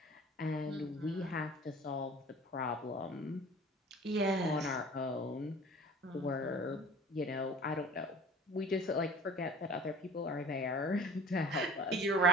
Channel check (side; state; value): both; normal; correlation 0.44